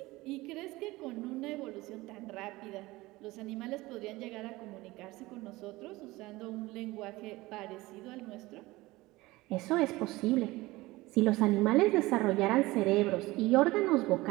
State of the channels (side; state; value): left; quieter; 20.0 dB